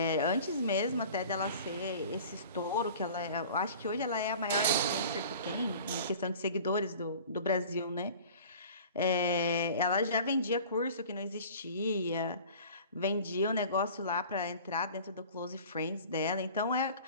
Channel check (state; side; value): inverted; both; correlation -0.43